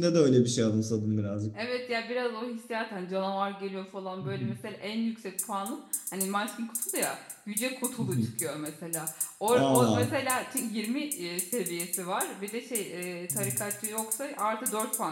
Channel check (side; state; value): both; identical; correlation 1.00